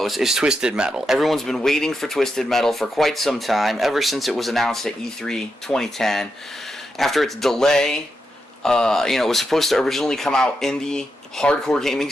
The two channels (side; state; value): both; normal; correlation 0.86